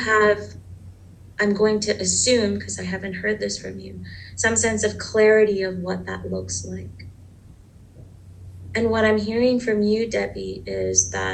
I'm going to assume, because I haven't heard this from you, some sense of clarity of what that looks like. And what I'm hearing from you, Debbie, is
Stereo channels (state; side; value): identical; both; correlation 1.00